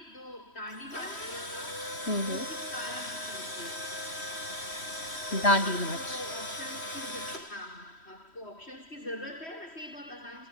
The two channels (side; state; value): right; late; 3.1 ms